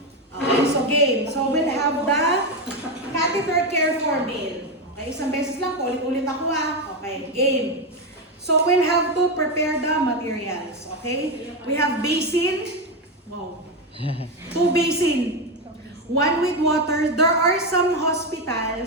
Okay, so game. So we'll have the catheter care for male. Okay, isang beses lang, ulit-ulit ako Okay, game. So we'll have to prepare the materials. Okay, we have basin. Wow. 2 basin. 1 with water. There are some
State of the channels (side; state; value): both; normal; correlation 0.10